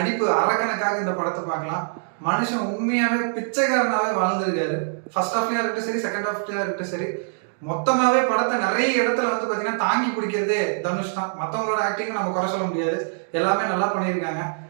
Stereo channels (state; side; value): silent; left; digital silence